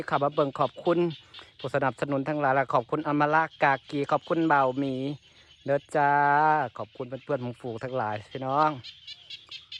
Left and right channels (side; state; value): both; identical; correlation 1.00